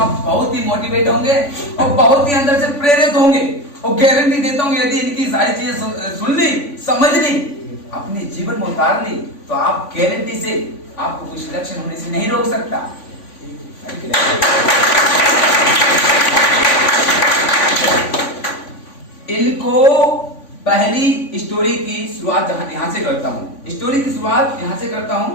बहुत ही मोटिवेट होंगे और बहुत ही अंदर से प्रेरित होंगे और गारंटी देता हूँ यदि इनकी सारी चीजें सुन ली, समझ ली, अपने जीवन में उतार ली तो आप गारंटी से आपको कुछ लक्षण होने से नहीं रोक सकता। इनको पहली स्टोरी की शुरुआत यहाँ से करता हूँ। स्टोरी की शुरुआत यहाँ से करता हूँ।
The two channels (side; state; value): right; late; 3.5 ms